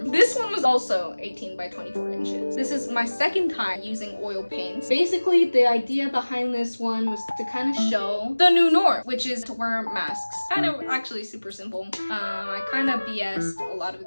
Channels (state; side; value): inverted; both; correlation -1.00